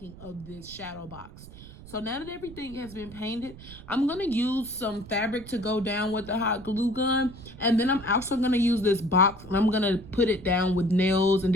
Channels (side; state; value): right; noise; rumble, 17 dB below the sound